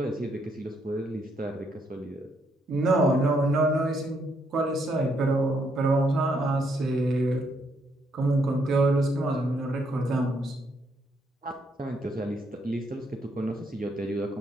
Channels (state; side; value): normal; both; correlation 0.74